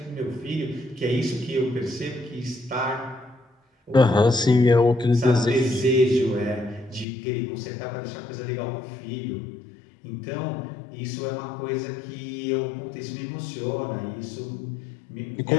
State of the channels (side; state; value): right; drops out; at 7.1 s